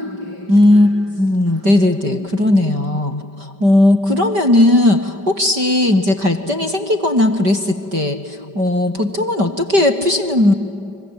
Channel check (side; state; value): left; late; 5.1 ms